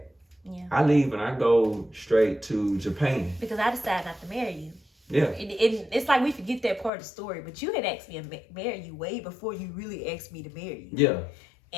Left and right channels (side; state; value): right; drops out; at 6.9 s